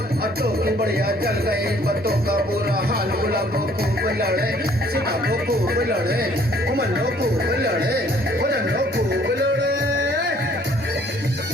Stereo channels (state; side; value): normal; both; correlation 0.59